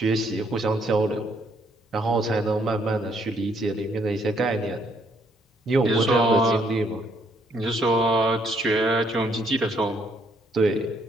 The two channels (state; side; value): normal; both; correlation 0.69